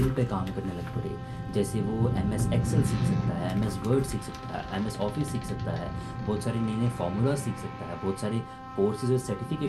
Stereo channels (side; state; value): both; identical; correlation 1.00